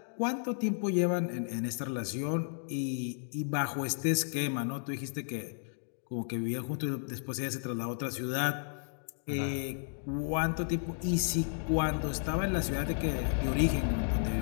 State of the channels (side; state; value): right; silent; digital silence